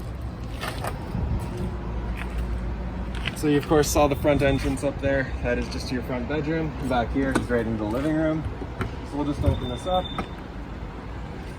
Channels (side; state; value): both; identical; correlation 1.00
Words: So you of course saw the front entrance up there. That is just your front bedroom. Back here is right into the living room. So we'll just open this up.